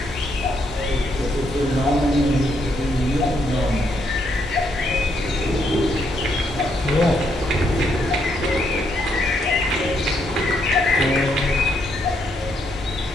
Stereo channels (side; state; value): both; normal; correlation 0.75